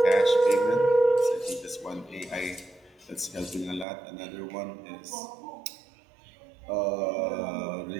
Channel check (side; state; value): left; drops out; at 3.9 s